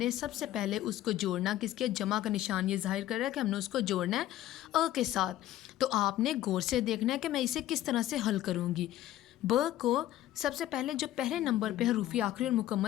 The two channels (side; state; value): right; quieter; 13.7 dB